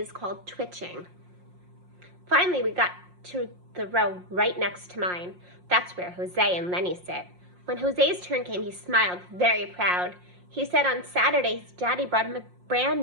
called Twitching. Finally, we got to the row right next to mine. That's where Jose and Lenny sit. When Jose's turn came, he smiled, very proud. He said on Saturday his daddy brought him a brand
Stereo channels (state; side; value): late; left; 5.6 ms